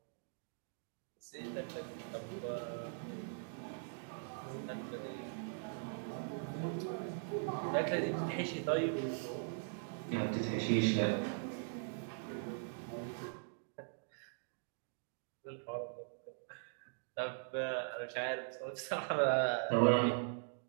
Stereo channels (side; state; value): left; silent; digital silence